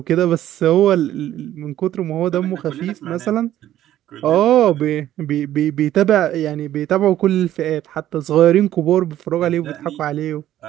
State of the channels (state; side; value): quieter; left; 12.6 dB